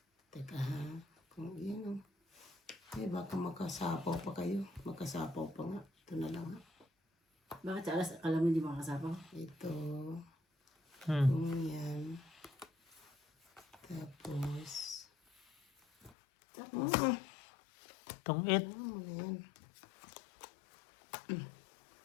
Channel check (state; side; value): drops out; right; at 16.2 s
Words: teka ha. Kung yan o. Eh, baka makasapaw pa kayo. Makasapaw pa nga. Ito na lang ha. Bakit sa alas, akala mo hindi makakasapaw? Ito. Hmm. Kung yan. Tapos. Itong it. Yan.